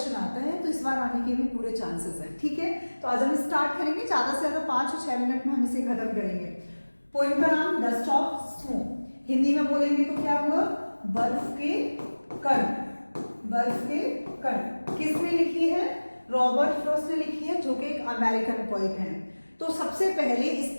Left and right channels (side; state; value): both; inverted; correlation -1.00